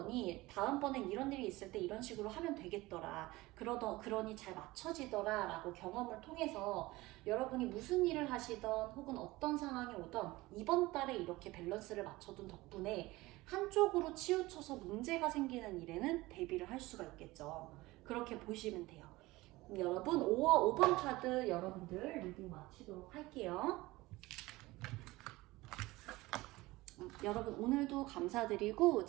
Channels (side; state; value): left; quieter; 19.9 dB